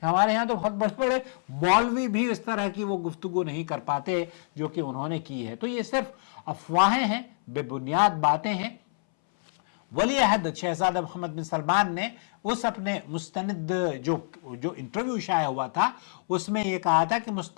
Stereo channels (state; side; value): silent; right; 60 dB below the other